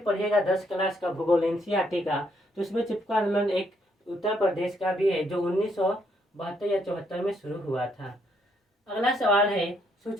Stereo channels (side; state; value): both; normal; correlation 0.72